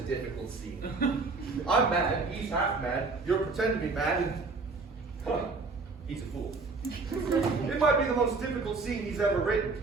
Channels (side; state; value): left; quieter; 4.0 dB